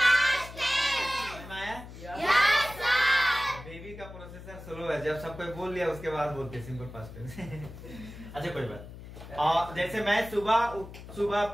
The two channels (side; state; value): left; noise; hum, 14 dB below the sound